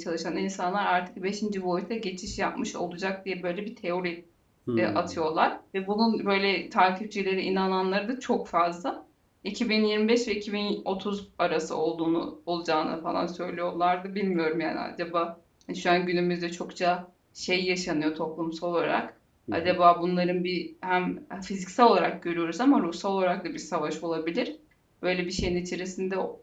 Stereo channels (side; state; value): both; identical; correlation 1.00